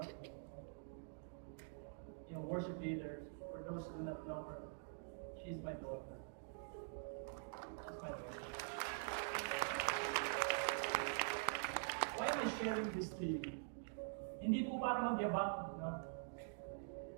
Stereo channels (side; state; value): left; silent; digital silence